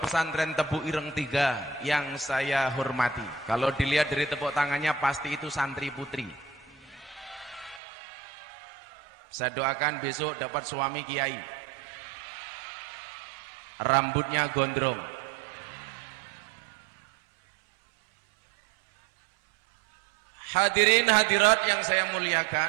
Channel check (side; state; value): left; drops out; at 7.8 s